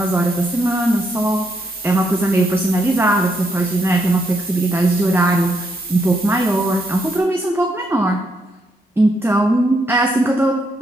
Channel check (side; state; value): both; normal; correlation 0.77